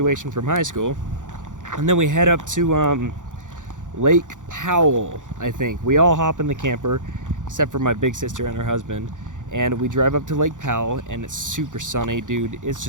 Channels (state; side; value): late; left; 0.87 ms